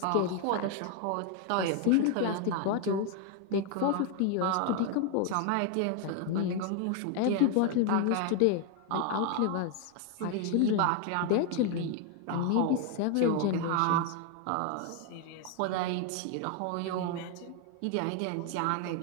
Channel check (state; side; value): different; both; correlation 0.01